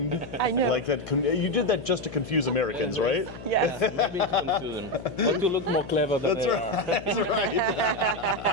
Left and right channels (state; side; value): noise; left; hum, 14 dB below the sound